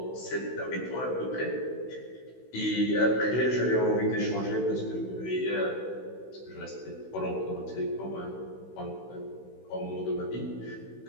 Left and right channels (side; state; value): right; late; 16 ms